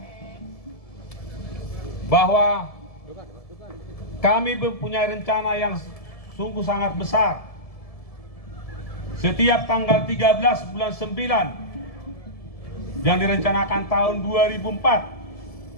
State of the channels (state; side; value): late; right; 1.7 ms